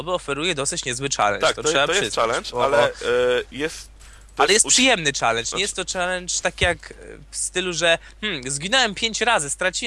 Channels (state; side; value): identical; both; correlation 1.00